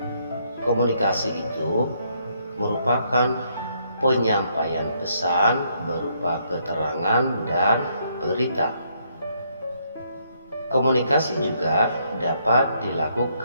Komunikasi itu merupakan penyampaian pesan berupa keterangan dan berita. Komunikasi juga dapat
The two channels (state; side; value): inverted; both; correlation -0.72